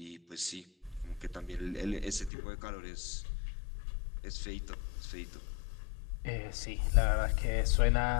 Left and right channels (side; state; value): right; drops out; at 2.3 s